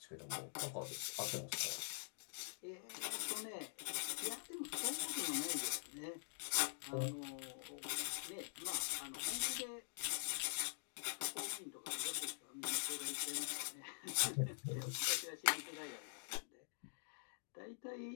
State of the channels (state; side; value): silent; right; digital silence